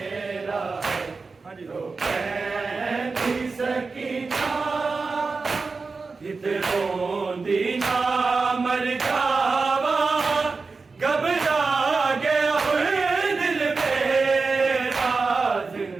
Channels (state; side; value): quieter; left; 4.3 dB